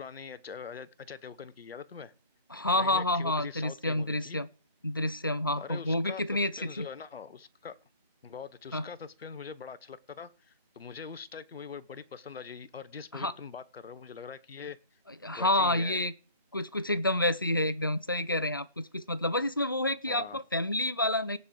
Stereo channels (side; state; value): both; inverted; correlation -0.41